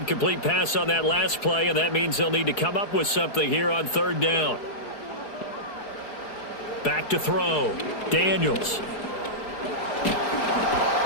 pass on that last play, and that means they'll need to come up with something here on 3rd down. Back to throw. Daniels.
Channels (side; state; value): right; late; 4.7 ms